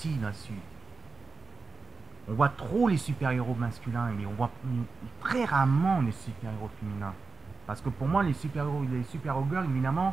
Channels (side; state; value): left; quieter; 4.4 dB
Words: là-dessus, on voit trop les super-héros masculins, mais on voit très rarement les super-héros féminins. Parce que pour moi, les super-héros girls,